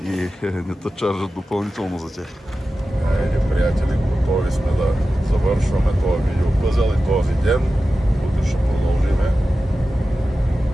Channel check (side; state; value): both; normal; correlation 0.94